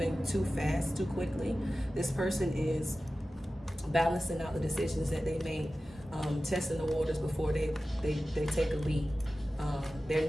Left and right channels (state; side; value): normal; both; correlation 0.95